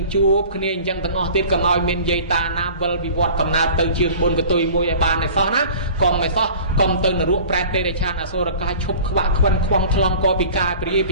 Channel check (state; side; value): inverted; both; correlation -0.44